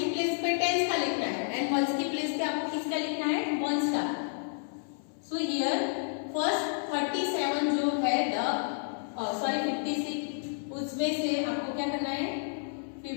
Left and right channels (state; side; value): silent; right; 58 dB below the other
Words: प्लेस पे टेंस का लिखना है एंड वंस की प्लेस पे आपको किसका लिखना है, वंस का। सो हियर फर्स्ट 37 जो है सॉरी 56, उसमें से आपको क्या करना है,